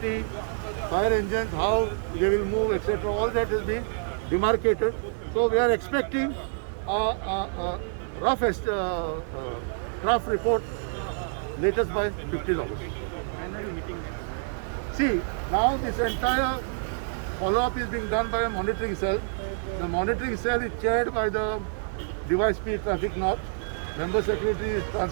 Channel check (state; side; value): silent; left; digital silence